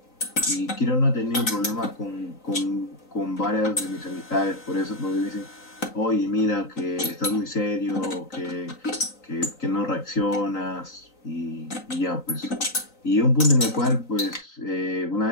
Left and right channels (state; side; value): late; right; 3.9 ms